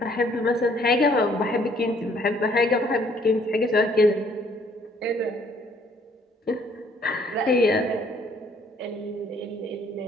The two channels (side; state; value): both; normal; correlation 0.63